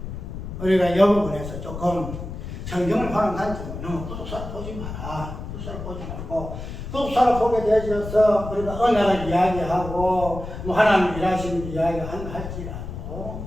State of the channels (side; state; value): left; noise; rumble, 9 dB below the sound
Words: 우리가 이 부분에서 조금 성경을 보는 관점은 너무 구속사를 보지 마라. 구속사를 보지 말고 구속사를 보게 되어서 우리가 언약을 이야기하고 뭐 하나님 일하시는 이야기한다